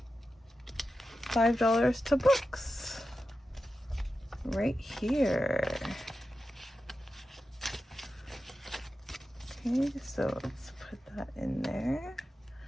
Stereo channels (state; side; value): normal; both; correlation 0.91